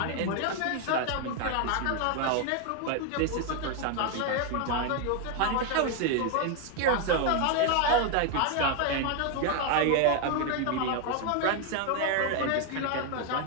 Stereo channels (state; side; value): different; both; correlation 0.01